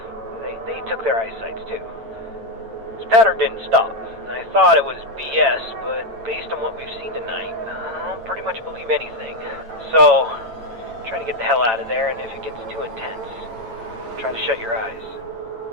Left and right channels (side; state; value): left; late; 8.9 ms